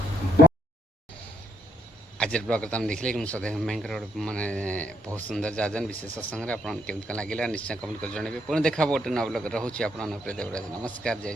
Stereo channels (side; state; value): both; normal; correlation 0.73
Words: आज ब्लॉग तुम देखिले कि सदैव भयंकर माने बहुत सुंदर जाजन विशेष सत्संग आपन केमत लगिला निश्चय कमेंट कर जणबे पुणी देखा बोटे न ब्लॉग रहउछि आपन प्रिय देवराज। नमस्कार